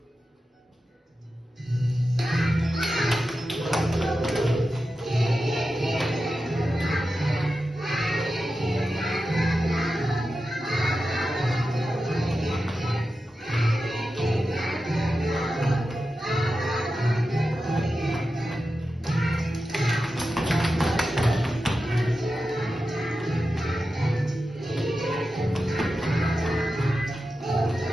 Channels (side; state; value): both; normal; correlation 0.91